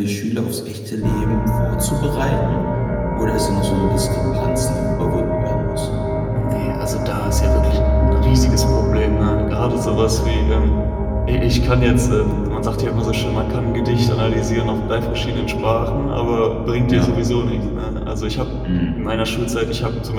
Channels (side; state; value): both; identical; correlation 1.00